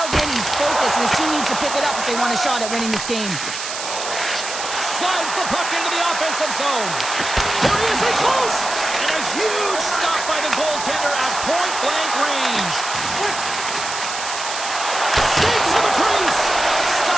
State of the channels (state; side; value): noise; right; hiss, 6 dB below the sound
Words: in, he's focused, and his team needs to pick it up if they want a shot at winning this game. offensive zone. There he is, in close! And a huge stop by the goaltender at point-blank range. Skates to the crease.